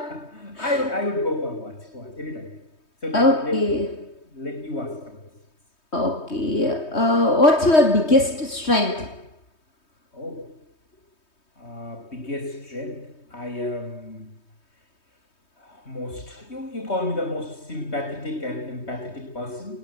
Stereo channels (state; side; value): late; right; 3.2 ms